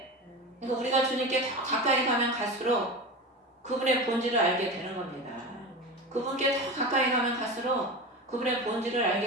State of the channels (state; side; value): normal; both; correlation 0.26